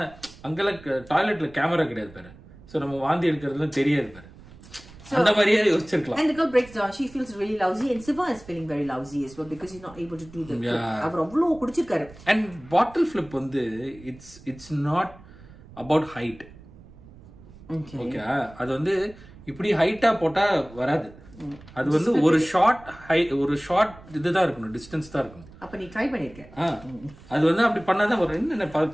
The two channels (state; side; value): noise; right; rumble, 21 dB below the sound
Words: அங்கெல்லாம் டாய்லெட்ல கேமரா கிடையாது பாரு, சோ நம்ம வாந்தி எடுக்கிறதுலாம் தெரியாது பாரு, அந்த மாதிரியே யோசிச்சிருக்கலாம். And the girl breaks down, she feels really lousy and Siva is feeling very lousy as well because he's not able to do the அவர் அவ்வளவு குடிச்சிருக்காரு. And bottle flip வந்து it's not about height. Okay, அது வந்து இப்படி ஹைட்டா போட்டா வராது. அது வந்து ஒரு ஷார்ட் இதுதான் இருக்கணும், டிஸ்டன்ஸ் தான் இருக்கணும். அப்ப நீ ட்ரை பண்ணிருக்க. அது வந்து அப்படி பண்ணாதான் ஒரு என்ன